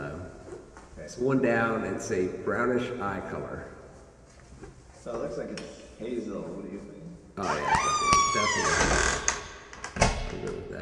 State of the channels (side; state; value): both; identical; correlation 1.00